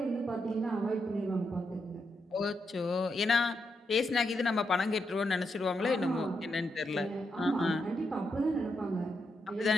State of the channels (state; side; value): normal; both; correlation 0.83